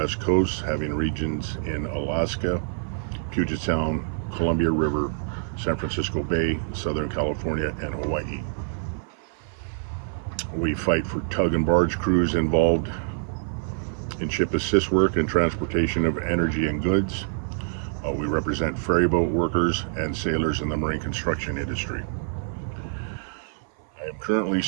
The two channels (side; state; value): left; silent; 58 dB below the other